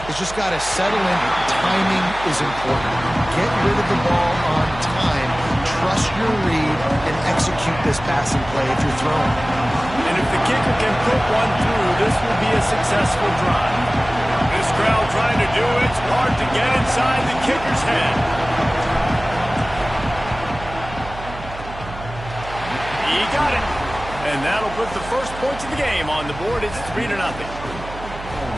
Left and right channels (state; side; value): noise; right; hum, 13 dB below the sound